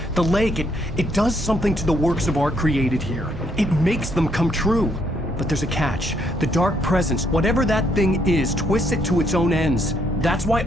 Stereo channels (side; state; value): both; normal; correlation 0.72